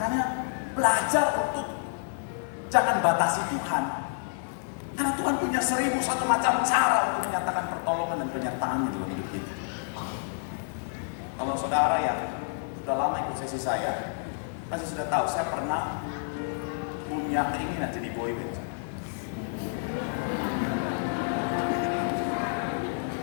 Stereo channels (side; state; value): right; silent; 59 dB below the other